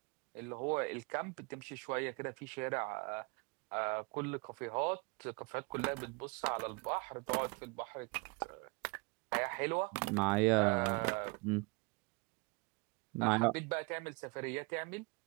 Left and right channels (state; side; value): quieter; left; 29.5 dB